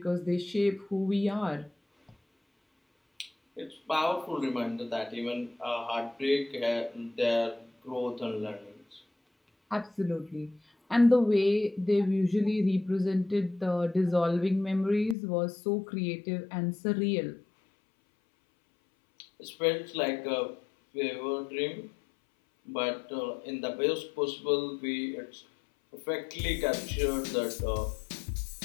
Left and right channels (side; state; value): right; drops out; at 15.2 s